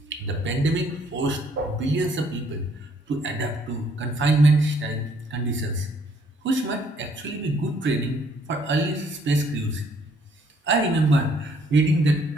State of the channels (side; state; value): both; normal; correlation 0.65